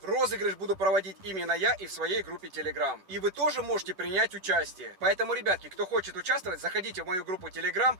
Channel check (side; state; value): left; late; 11 ms